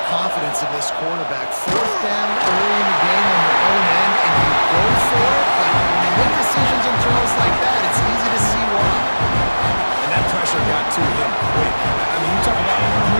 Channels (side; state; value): both; inverted; correlation -1.00